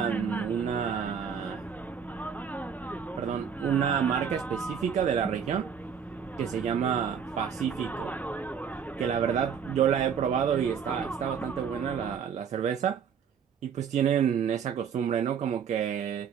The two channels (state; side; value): quieter; left; 7.3 dB